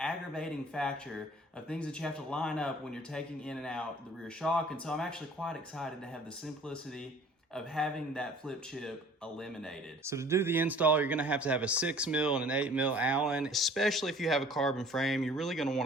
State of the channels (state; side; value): normal; both; correlation 0.50